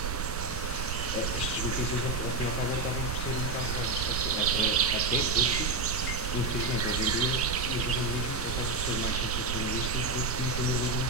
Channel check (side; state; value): right; noise; rumble, 3 dB below the sound